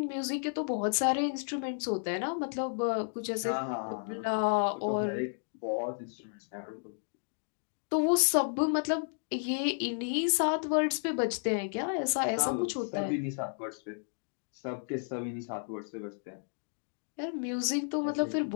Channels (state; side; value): silent; right; digital silence